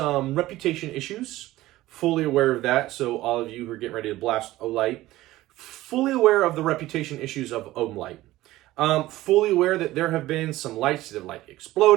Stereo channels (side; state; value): left; quieter; 16.6 dB